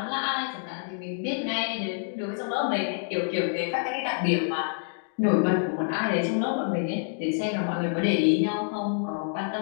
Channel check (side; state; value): right; silent; 60 dB below the other